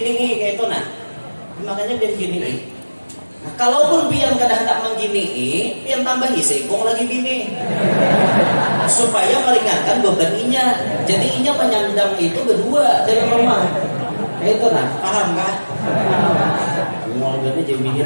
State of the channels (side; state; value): both; inverted; correlation -1.00